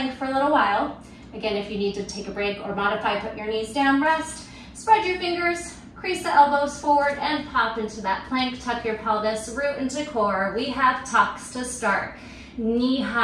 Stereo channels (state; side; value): identical; both; correlation 1.00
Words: for a little while. Again, if you need to take a break or modify, put your knees down, rest, spread your fingers, crease the elbows forward and pop into that plank. Tuck your pelvis, root into core. We have tucks to start. Knee